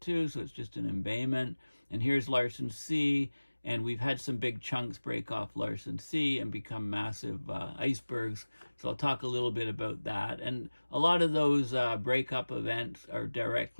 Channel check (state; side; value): inverted; both; correlation -1.00